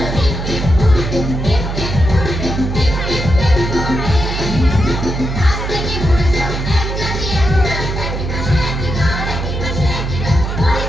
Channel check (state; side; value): noise; right; hum, 4 dB below the sound